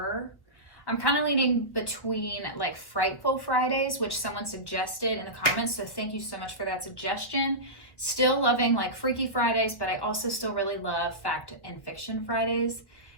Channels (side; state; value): right; late; 1.1 ms